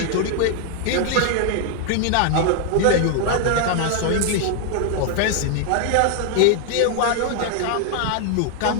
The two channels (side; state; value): both; different; correlation 0.00